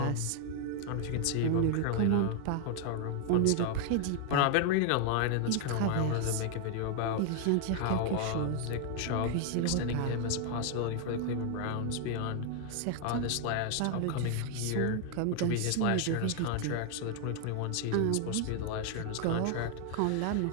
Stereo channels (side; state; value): both; different; correlation 0.00